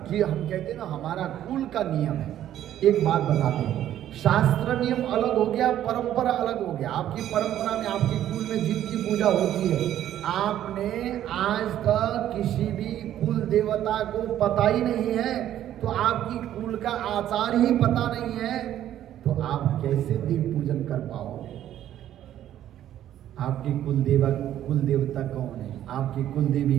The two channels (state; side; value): quieter; left; 11.7 dB